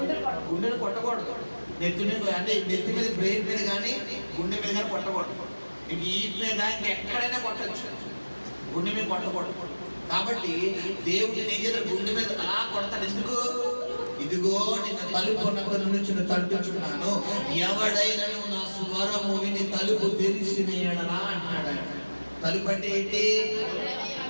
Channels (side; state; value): both; inverted; correlation -1.00